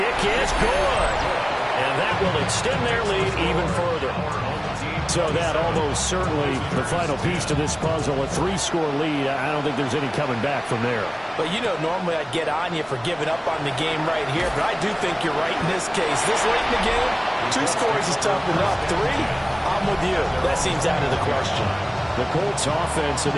is good. And that will extend their lead even further. So that almost certainly the final piece to this puzzle, a 3-score lead. I don't think there's any coming back from there. But, you know, normally I'd get on you for giving up on the game right here, but I do think you're right in this case. This late in the game, 2 scores is tough enough. 3, I'm with you. That seems out of the question. The Colts offense and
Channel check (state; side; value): identical; both; correlation 1.00